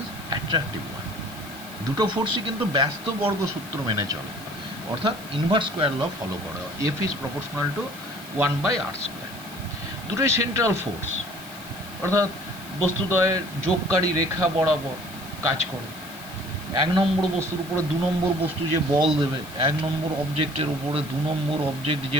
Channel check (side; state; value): right; noise; hiss, 18 dB below the sound